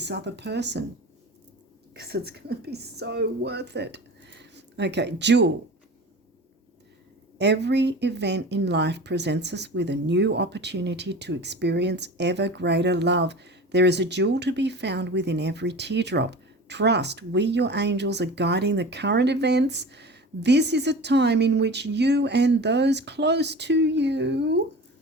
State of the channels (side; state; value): both; normal; correlation 0.35